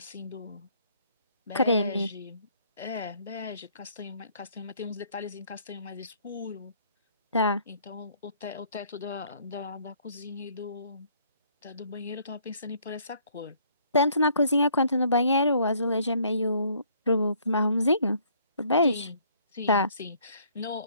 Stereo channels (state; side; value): inverted; both; correlation -0.62